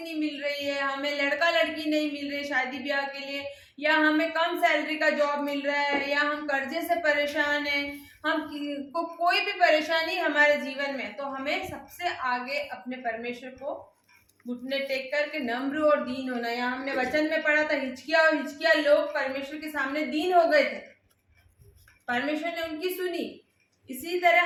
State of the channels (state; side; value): identical; both; correlation 1.00